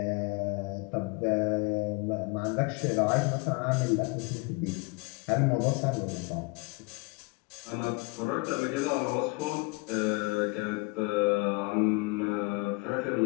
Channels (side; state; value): right; quieter; 28.2 dB